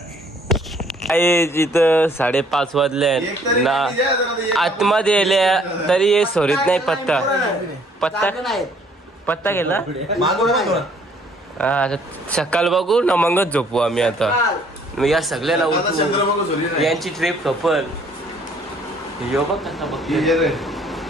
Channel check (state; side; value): normal; both; correlation 0.61